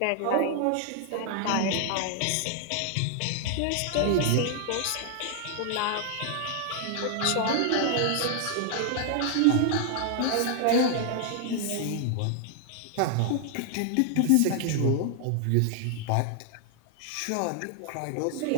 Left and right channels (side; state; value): both; different; correlation 0.00